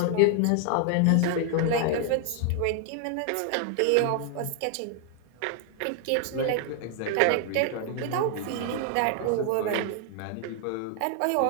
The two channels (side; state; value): both; different; correlation 0.00